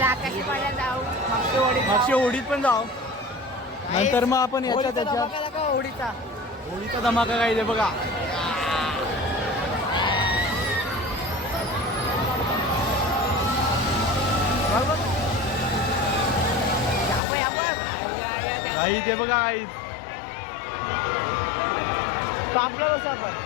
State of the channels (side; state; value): right; drops out; at 17.2 s